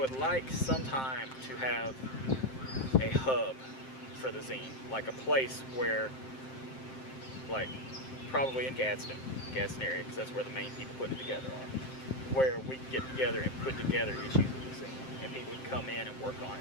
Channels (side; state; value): right; late; 7.6 ms